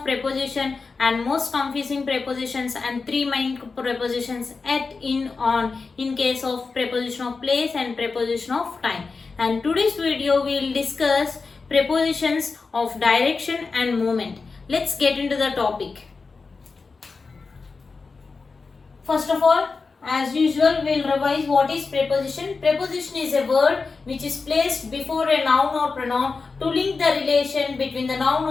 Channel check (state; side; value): quieter; right; 4.4 dB